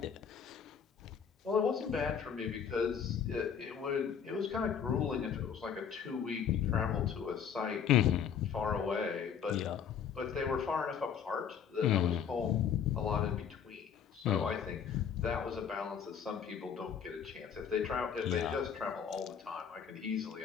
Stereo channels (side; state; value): right; quieter; 7.6 dB